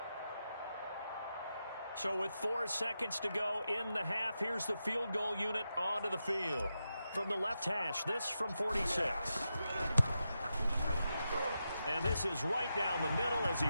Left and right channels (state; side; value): inverted; both; correlation -0.88